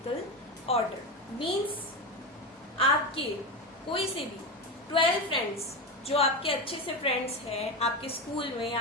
order. Means आपके कोई से भी 12 friends जो आपके अच्छे से friends हैं, आपके स्कूल में,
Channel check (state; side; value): normal; both; correlation 0.18